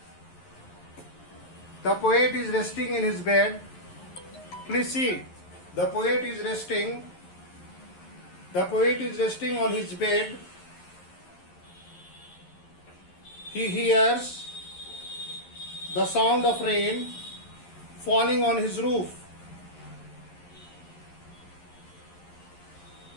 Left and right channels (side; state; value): right; late; 11 ms